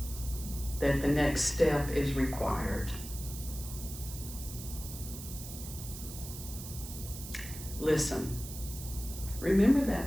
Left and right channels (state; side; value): noise; right; hiss, 11 dB below the sound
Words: that the next step is required, listen. Remember